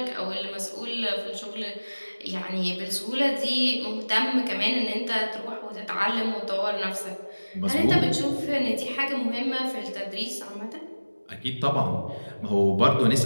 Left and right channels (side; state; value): both; inverted; correlation -1.00